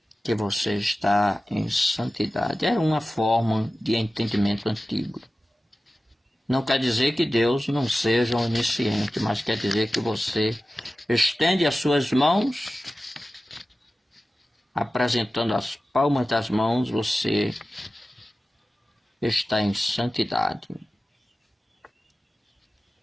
que você está em santidade. Era uma forma de entendimento antigo. Não quer dizer que Deus não seja onisciente, mas quer dizer que você estende as suas mãos, apresentando as palmas das mãos, você está em santidade.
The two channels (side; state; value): both; normal; correlation 0.95